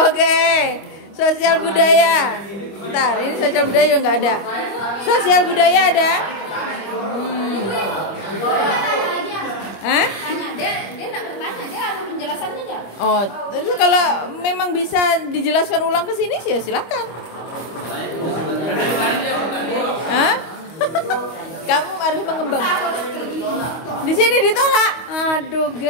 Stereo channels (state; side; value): late; right; 25 ms